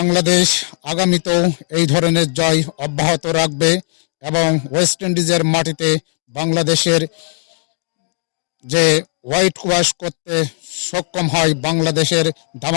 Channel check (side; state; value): right; silent; digital silence